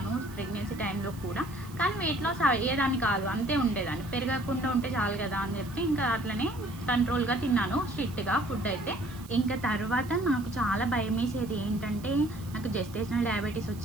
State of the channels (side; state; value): right; noise; hiss, 21 dB below the sound